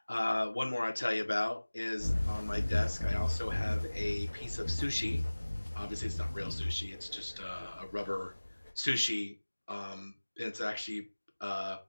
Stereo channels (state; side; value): inverted; both; correlation -1.00